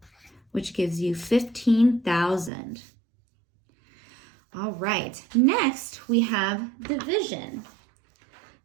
which gives you 15,000. All right, next we have division,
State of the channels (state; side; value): drops out; left; at 2.5 s